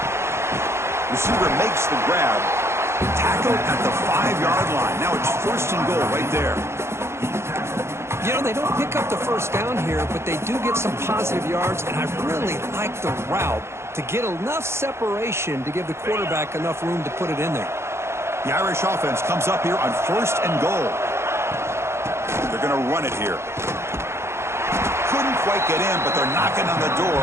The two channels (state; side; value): late; left; 0.13 ms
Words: Receiver makes the grab. Tackled at the 5-yard line. Now it's 1st and goal right there. You know, they don't pick up the first down here, but they do get some positive yards, and I really like the route to get enough separation to give the quarterback enough room to put it in there. The Irish offense comes up here on 1st and goal. They're going to run it here. Couldn't quite get in, but they're knocking on the door